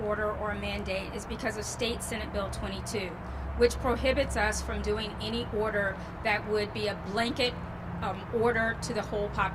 order or a mandate is because of State Senate Bill 22, which prohibits us from doing any order that would be a blanket order to the whole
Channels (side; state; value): both; identical; correlation 1.00